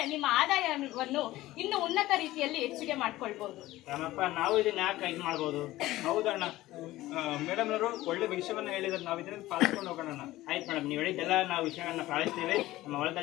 ನಿಮ್ಮ ಆದಾಯವನ್ನು ಇನ್ನು ಉನ್ನತ ರೀತಿಯಲ್ಲಿ ಹೆಚ್ಚಿಗೆ ಮಾಡ್ಕೊಳ್ಬಹುದು. ರಾಮಪ್ಪ, ನಾವು ಇದನ್ನ ಯಾಕೆ ಇದು ಮಾಡ್ಬೋದು? ಹೌದಣ್ಣ, ಮೇಡಮ್ ಅವರು ಒಳ್ಳೆ ವಿಷಯವನ್ನ ಹೇಳಿದ್ರೆ ನಾವು ಇದನ್ನ ಪಾಲಿಸ್ಕೊಂಡು ಹೋಗೋಣ. ಆಯ್ತು ಮೇಡಮ್, ನೀವು ಹೇಳಿದ್ದೆಲ್ಲ ನಾವು ವಿಷಯಗಳನ್ನ ಪಾಲಿಸ್ತೀವಿ. ನಮ್ಮ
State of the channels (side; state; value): right; quieter; 16.8 dB